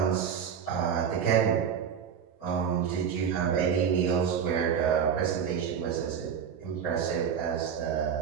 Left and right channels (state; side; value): quieter; left; 7.6 dB